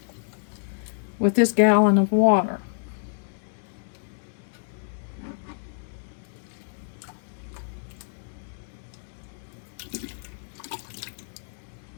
with this gallon of water.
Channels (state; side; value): silent; right; digital silence